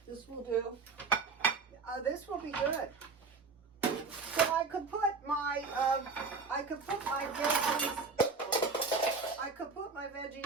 This will do. This will be good. So I could put my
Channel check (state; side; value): quieter; left; 4.4 dB